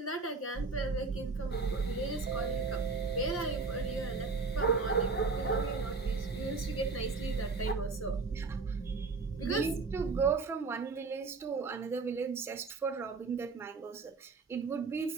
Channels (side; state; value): left; quieter; 4.2 dB